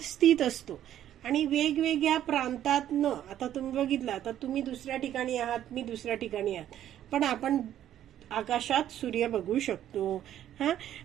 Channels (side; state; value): left; quieter; 11.4 dB